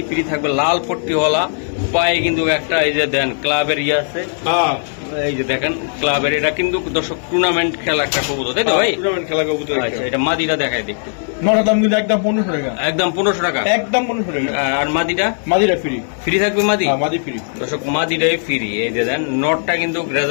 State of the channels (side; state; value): right; silent; digital silence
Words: ফ্রি থাকবে, লাল পট্টিওয়ালা। পায়ে কিন্তু একটা এই যে দেন ক্লাবের ইয়ে আছে, এই যে দেখেন ক্লাবের। এটা কিন্তু দর্শক টুর্নামেন্ট খেলা একটা কবুতর, তাই তো ভাই? খেলা কবুতর। আচ্ছা, এটা মাদিটা দেখায় দেখতে। দাম কিন্তু একদম 1500 টাকা, একদম 1500 টাকা, একদম 1500 টাকা। আর মাদিটা ফ্রি থাকবে। মাদি ফ্রি দর্শক, মাদিটাই ফ্রি। এই যে দেন নটটা কিন্তু